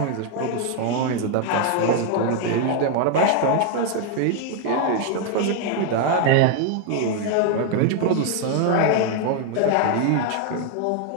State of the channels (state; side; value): different; both; correlation 0.00